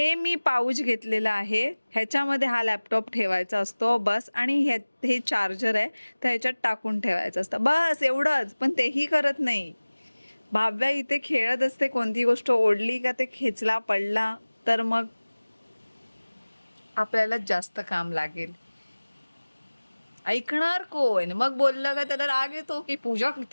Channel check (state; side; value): inverted; both; correlation -1.00